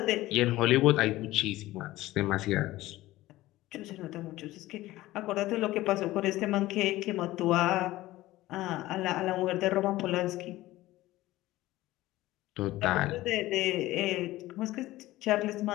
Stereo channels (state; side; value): quieter; right; 17.0 dB